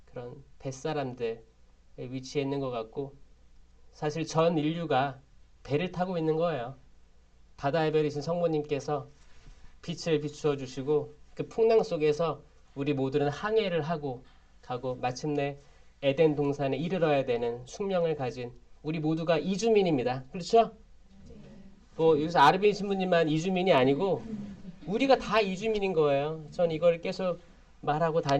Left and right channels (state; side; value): identical; both; correlation 1.00